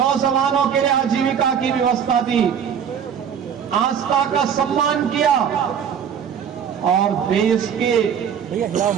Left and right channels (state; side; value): quieter; left; 8.0 dB